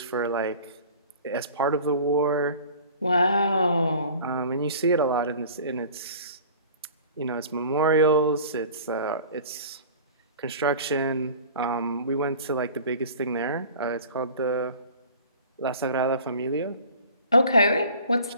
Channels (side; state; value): both; inverted; correlation -0.44